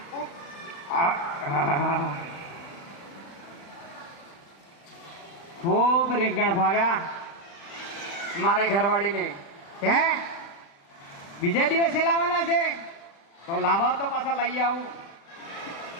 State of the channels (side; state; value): right; late; 36 ms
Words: ખૂબ રીંગણ ભાવ્યા મારે ઘરવાળીને. હે, બીજા દિવસે લાવવાના છે? તો લાવો તો પાછા લઈ આવું.